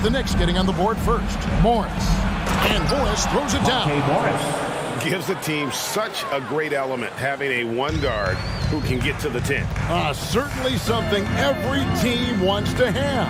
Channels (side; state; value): both; identical; correlation 1.00